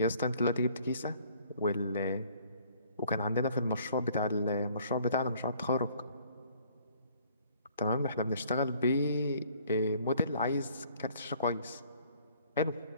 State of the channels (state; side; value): inverted; both; correlation -0.59